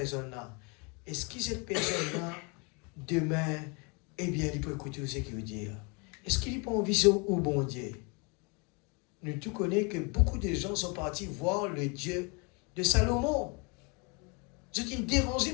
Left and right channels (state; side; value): quieter; right; 31.8 dB